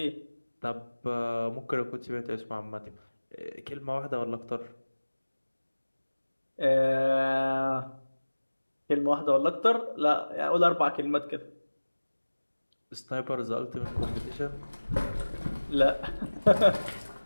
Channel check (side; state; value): both; inverted; correlation -1.00